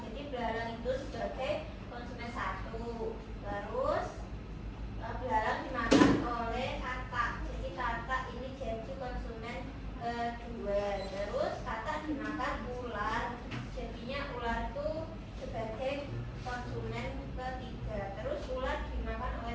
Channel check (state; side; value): identical; both; correlation 1.00